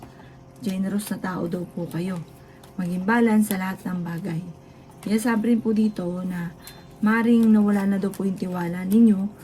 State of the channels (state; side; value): identical; both; correlation 1.00